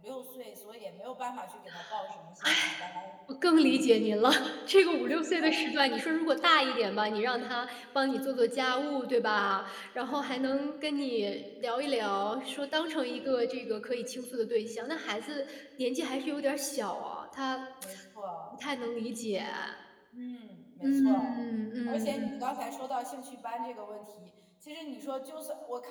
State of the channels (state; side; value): identical; both; correlation 1.00